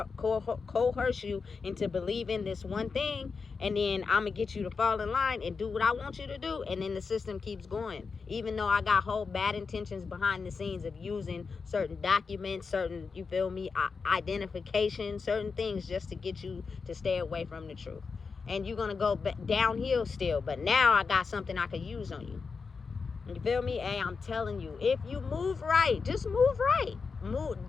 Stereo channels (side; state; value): right; quieter; 5.0 dB